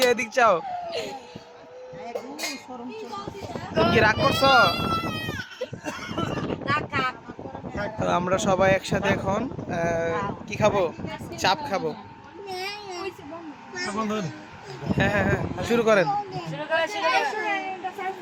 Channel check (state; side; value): identical; both; correlation 1.00